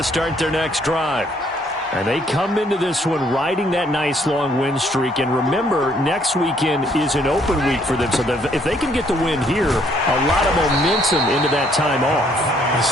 start their next drive. And they come into this one riding that nice long win streak. And remember, next weekend is an open week for them. So if they can get the win here, a lot of momentum into that time off. It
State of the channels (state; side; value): normal; both; correlation 0.66